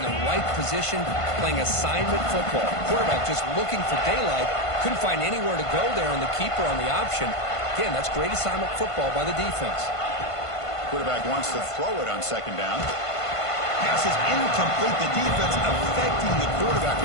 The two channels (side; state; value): right; late; 1.5 ms